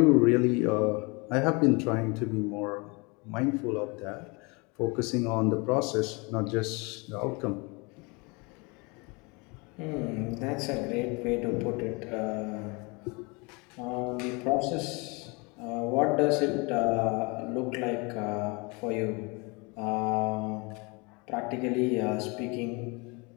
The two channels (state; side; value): quieter; right; 28.7 dB